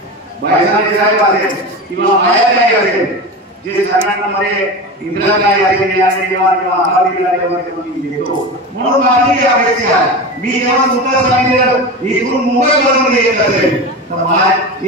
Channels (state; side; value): normal; both; correlation 0.26